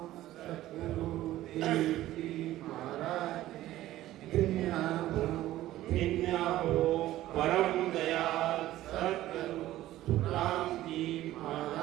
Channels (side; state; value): left; quieter; 14.9 dB